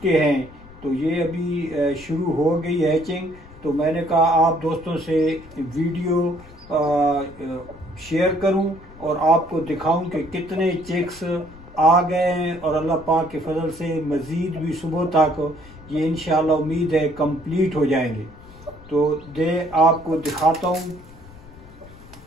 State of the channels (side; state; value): left; noise; rumble, 20 dB below the sound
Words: हैं। तो ये अभी शुरू हो गई हैचिंग। तो मैंने कहा आप दोस्तों से वीडियो शेयर करूं और आपको दिखाऊं कि कितने चिक्स आ गए हैं और अल्लाह पाक के फजल से मज़ीद भी सुबह तक ये इंशाल्लाह उम्मीद है कंप्लीट हो जाएंगे। तो आपको दिखाता हूं।